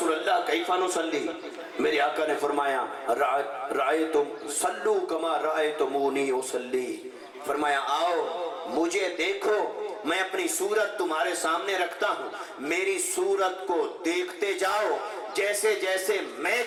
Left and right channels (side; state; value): both; identical; correlation 1.00